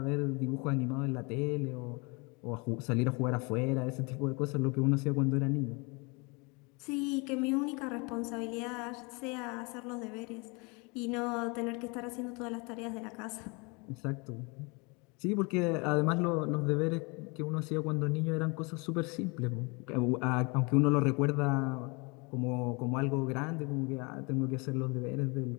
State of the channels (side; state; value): right; quieter; 29.7 dB